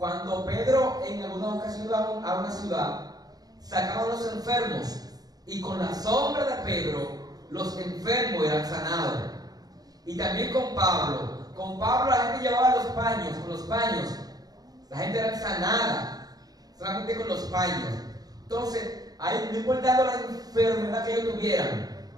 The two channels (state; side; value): late; left; 0.19 ms